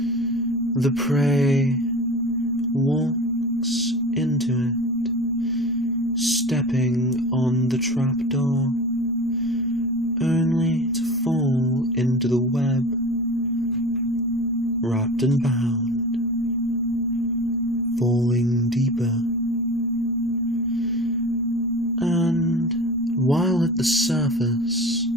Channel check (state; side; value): normal; both; correlation 0.34